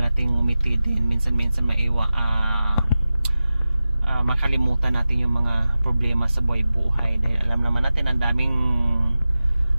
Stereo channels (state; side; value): inverted; both; correlation -0.95